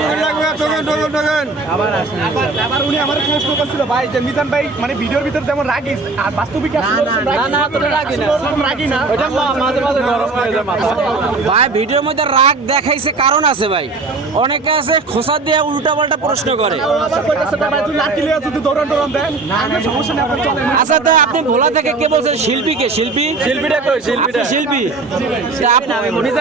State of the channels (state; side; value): quieter; left; 3.7 dB